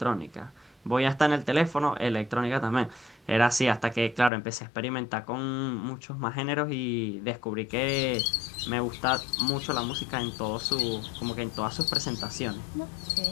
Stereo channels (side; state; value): right; drops out; at 4.3 s